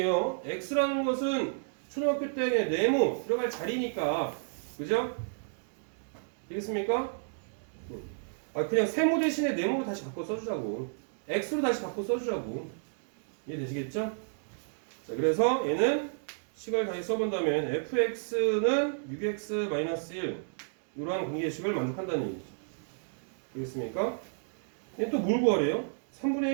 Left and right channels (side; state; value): left; silent; digital silence